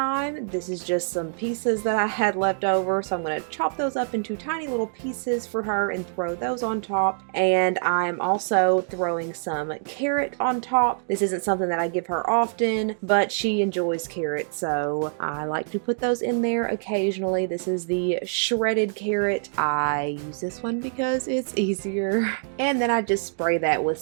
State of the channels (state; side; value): silent; left; digital silence